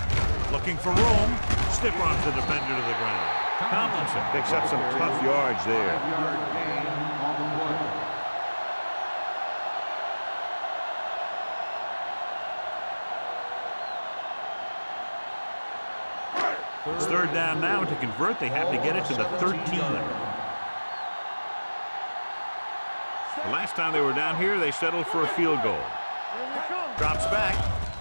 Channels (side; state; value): both; inverted; correlation -1.00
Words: Looking for room. Stiff arms the defender to the ground. Tomlinson picks up some tough yards there. 5-yard gain on the play. It's third down now. To convert, they have to get it to the 13. The last time they were down here, they settled for a field goal. Drops back.